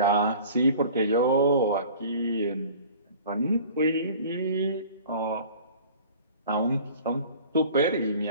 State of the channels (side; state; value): both; inverted; correlation -0.45